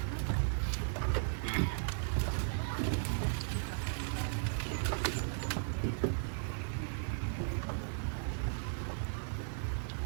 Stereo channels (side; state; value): left; silent; digital silence